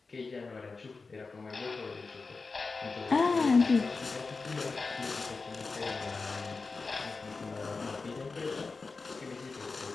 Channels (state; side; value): quieter; right; 4.2 dB